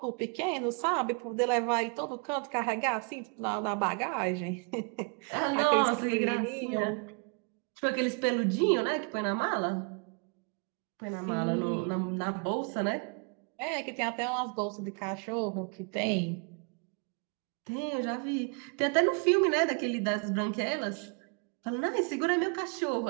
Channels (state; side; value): quieter; left; 38.2 dB